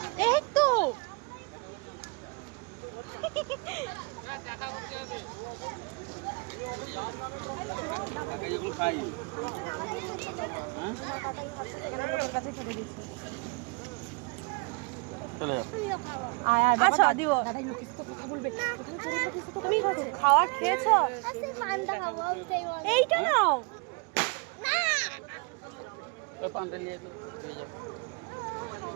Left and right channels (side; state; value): left; quieter; 31.0 dB